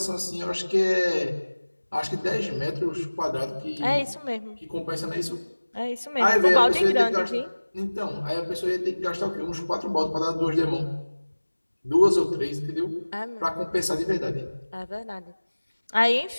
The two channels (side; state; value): both; inverted; correlation -1.00